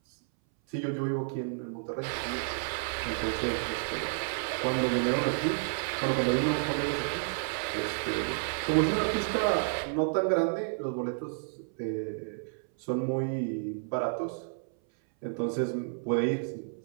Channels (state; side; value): silent; left; 57 dB below the other